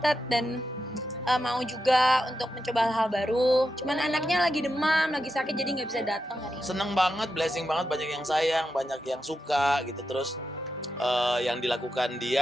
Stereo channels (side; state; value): both; normal; correlation 0.87